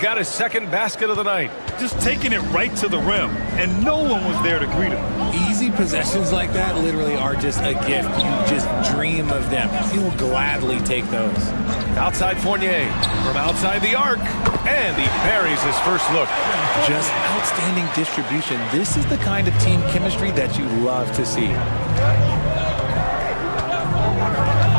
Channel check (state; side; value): inverted; both; correlation -1.00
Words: his second basket of the night. Just taking it right to the rim, and no one was there to greet him. Easy possessions like that literally are just a gift. You just dream of them. You'll gladly take those. Outside Fournier from outside the arc, and he buries his first look. Just outstanding distribution. This is the kind of team chemistry that you love to see.